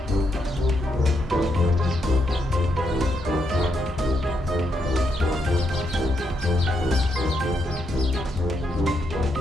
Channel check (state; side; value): normal; both; correlation 0.79